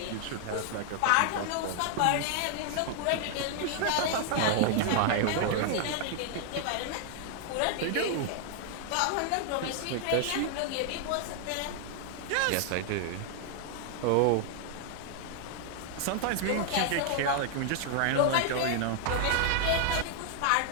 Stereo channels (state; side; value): different; both; correlation 0.00